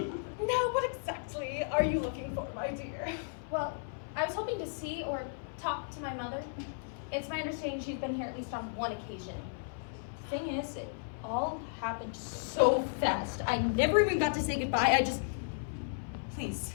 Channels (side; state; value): right; silent; 55 dB below the other